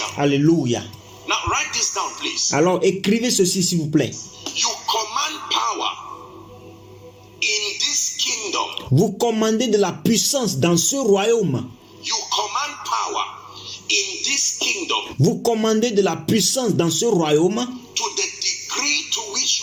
Alléluia. Now write this down, please. Alors écrivez ceci s'il vous plaît. You command power in this kingdom. Vous commandez de la puissance dans ce royaume. You command power in this kingdom Vous commandez de la puissance dans ce royaume to the degree to which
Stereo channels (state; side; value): identical; both; correlation 1.00